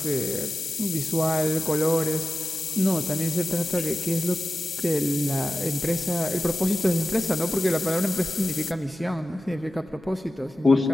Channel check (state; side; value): normal; both; correlation 0.93